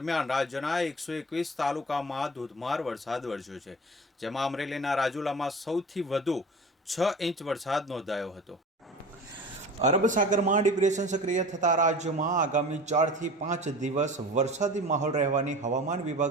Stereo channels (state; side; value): normal; both; correlation 0.38